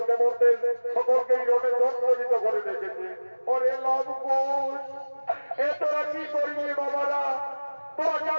দেবতাদের সকলকেই রণে জর্জরিত করে রেখেছে। ওরে লবকুশ, এ তোরা কি করবি বাবারা? তোরা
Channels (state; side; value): inverted; both; correlation -1.00